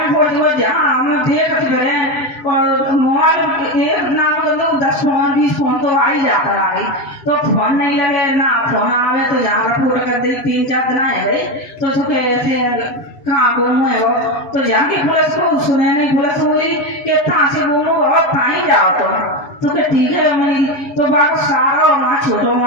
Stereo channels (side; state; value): right; late; 7.1 ms